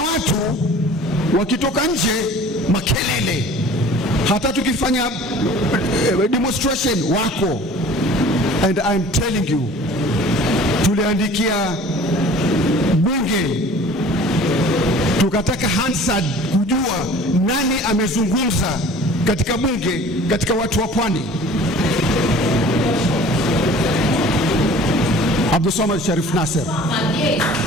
wakitoka nje makelele, hata tukifanya demonstration wako. And I'm telling you, tuliandikia bunge tukataka Hansard kujua nani amezungumza katika bunge katika watu wa pwani. Abdul Samad Sharif Nasser.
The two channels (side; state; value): both; normal; correlation 0.46